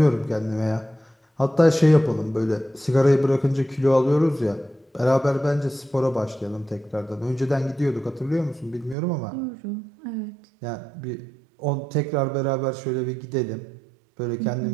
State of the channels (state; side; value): drops out; left; at 9.0 s